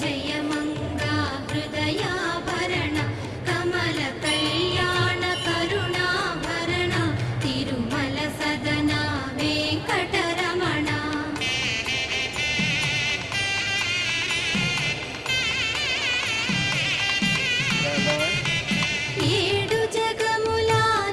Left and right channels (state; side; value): identical; both; correlation 1.00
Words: జయ మంగ హృదయాభరణ కమల కళ్యాణ కరుణాభరణ తిరుమల సదన వెంకటరమణ. ఏడు జగముల